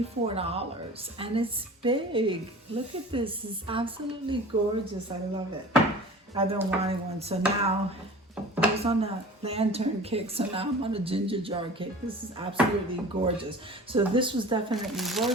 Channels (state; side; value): normal; both; correlation 0.41